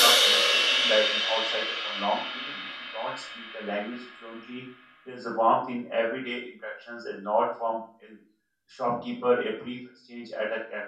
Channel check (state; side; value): identical; both; correlation 1.00